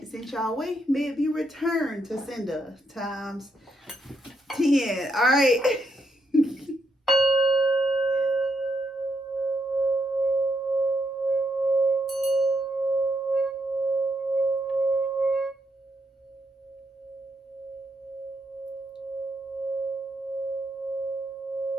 sent y'all way, may it be returned to sender times 10. All right.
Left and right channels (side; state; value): both; normal; correlation 0.78